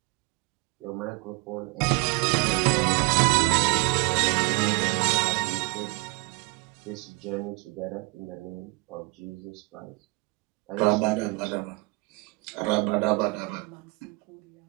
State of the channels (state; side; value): quieter; left; 27.5 dB